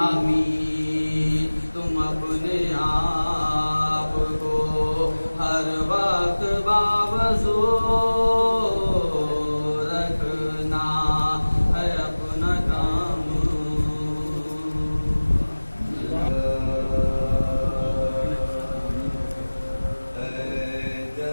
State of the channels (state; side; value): inverted; both; correlation -1.00